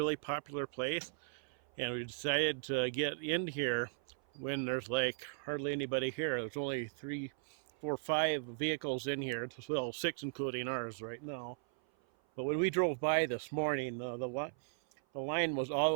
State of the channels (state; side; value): silent; left; 53 dB below the other